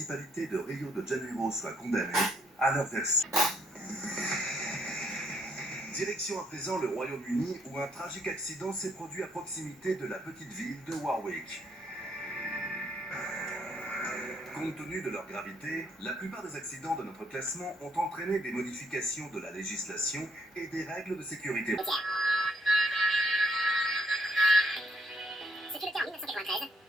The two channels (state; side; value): normal; both; correlation 0.70